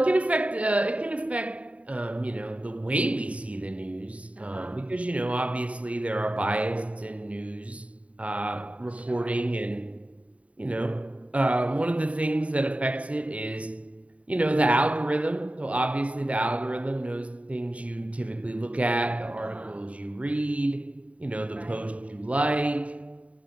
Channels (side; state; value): left; late; 0.066 ms